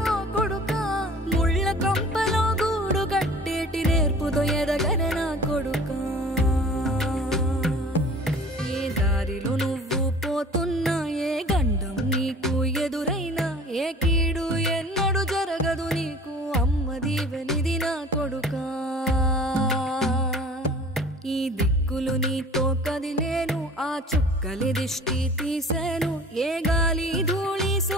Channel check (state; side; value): normal; both; correlation 0.45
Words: కొడుకా ముళ్ళ కంపలో గూడు కట్టేటి నేర్పుతో ఎదగన నా కొడుకా ఏ దారిలో నువ్వు పోతున్నా ఏ గండం నీకు ఎదురైనా ఏ కీడు ఎన్నడు జరగదు నీకు అమ్మ దీవెనిది నా కొడుకా ఈ దిక్కులు నీతో కదిలేను ఆ చుక్కలి దిష్టి తీసేను ఏ గాలి ధూళి